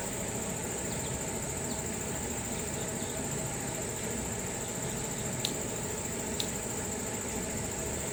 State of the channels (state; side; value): identical; both; correlation 1.00